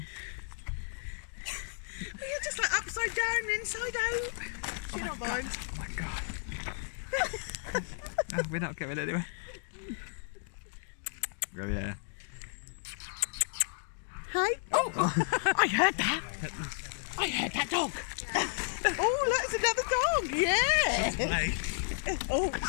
Well, you're just like upside down, inside out. Do you not mind? Oh my god. No, we're not going anywhere. Oh yeah. Hey? Oh, I heard that. I heard that dog. Oh, that's another dog. Yeah. Play. Oh,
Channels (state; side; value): silent; right; digital silence